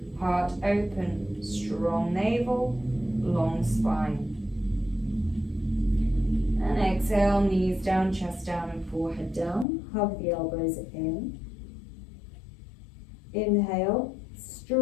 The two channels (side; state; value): right; drops out; at 9.7 s